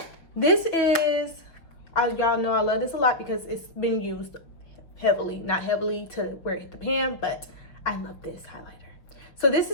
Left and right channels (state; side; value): late; right; 5.9 ms